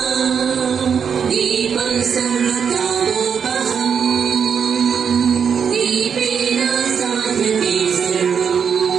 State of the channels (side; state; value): left; quieter; 7.0 dB